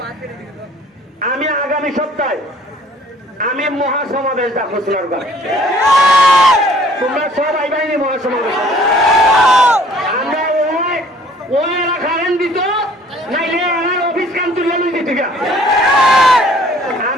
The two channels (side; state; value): both; normal; correlation 0.55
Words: আমি আগামী সপ্তাহে আমি মহাসমাবেশ ডাকবো সোনারগাঁ। তোমরা সব আইবাইনি মহাসমাবেশ। আমরা ওই এরা কারেন্ট দিত, নাইলে এরা অফিস কাম তুলে লই দিত।